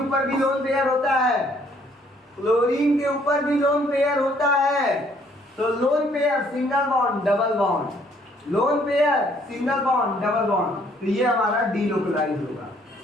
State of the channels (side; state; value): both; normal; correlation 0.64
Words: भी लोन पेयर होता है, क्लोरीन के ऊपर भी लोन पेयर होता है। तो lone pair single bond double bond, lone pair single bond double bond, तो ये हमारा डीलोकलाइज होगा।